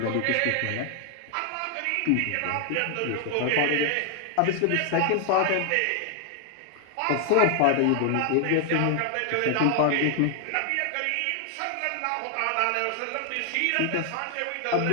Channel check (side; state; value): both; different; correlation 0.00